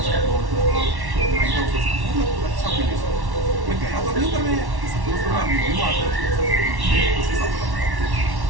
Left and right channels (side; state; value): left; late; 1.1 ms